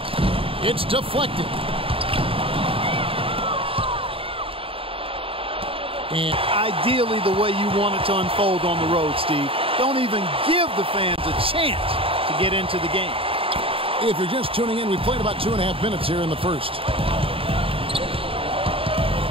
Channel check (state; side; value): late; left; 0.27 ms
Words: It's deflected. And ideally the way you want it to unfold on the road, Steve. Don't even give the fans a chance to get into the game. If you're just tuning in, we played about 2.5 minutes here in the first.